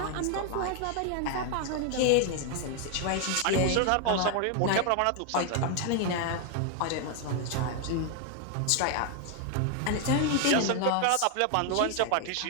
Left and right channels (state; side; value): different; both; correlation 0.00